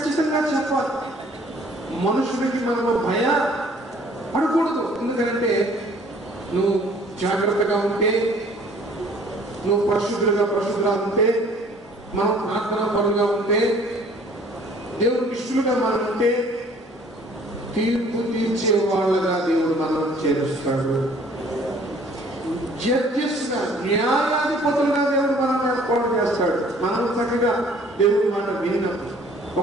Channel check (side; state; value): both; normal; correlation 0.56